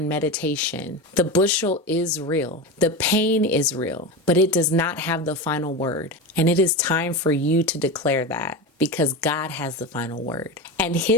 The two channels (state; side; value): normal; both; correlation 0.22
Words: meditation. The bushel is real. The pain is real, but it does not have the final word. And it is time for you to declare that, because God has the final word. And